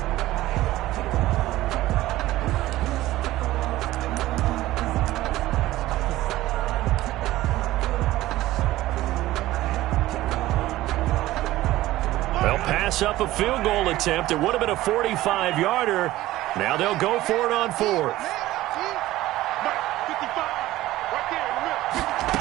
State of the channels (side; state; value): left; quieter; 16.2 dB